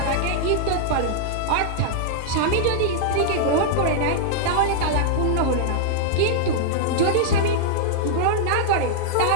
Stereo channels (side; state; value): both; different; correlation -0.01